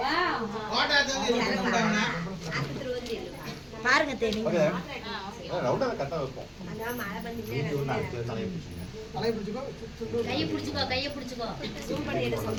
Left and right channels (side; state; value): both; identical; correlation 1.00